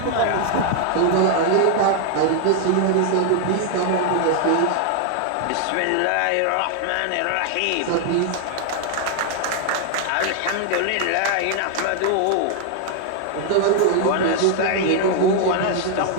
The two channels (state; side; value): different; both; correlation 0.00